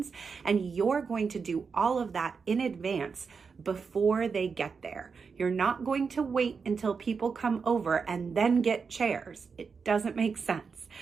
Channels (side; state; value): left; quieter; 5.4 dB